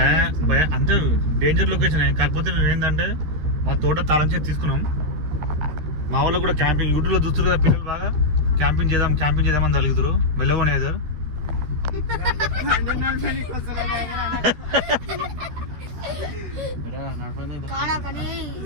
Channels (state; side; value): late; left; 13 ms